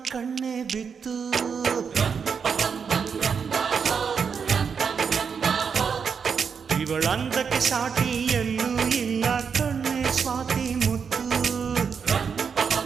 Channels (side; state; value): left; quieter; 6.3 dB